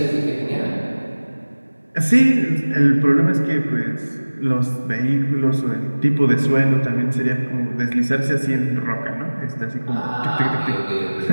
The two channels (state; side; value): inverted; both; correlation -1.00